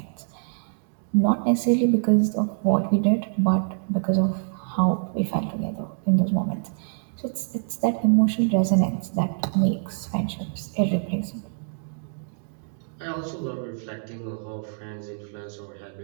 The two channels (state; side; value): silent; left; digital silence